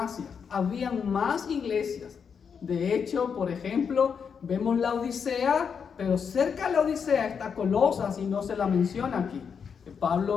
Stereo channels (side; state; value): right; quieter; 6.6 dB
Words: habían más iglesias. De hecho, por ejemplo, vemos la Odisea, pero cerca de la Odisea está Colosas y no se la menciona aquí.